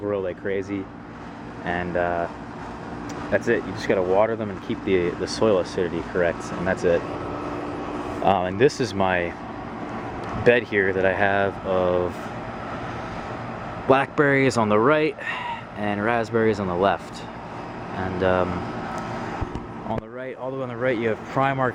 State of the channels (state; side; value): identical; both; correlation 1.00